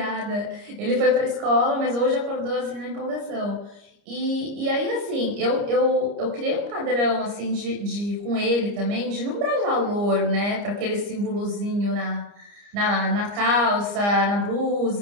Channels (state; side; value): late; left; 30 ms